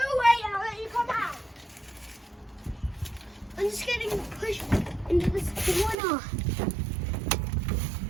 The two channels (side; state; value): left; drops out; at 6.0 s